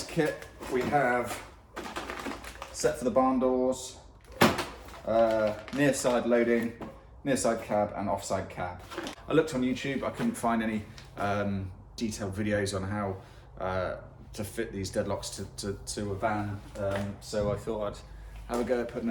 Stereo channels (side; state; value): both; identical; correlation 1.00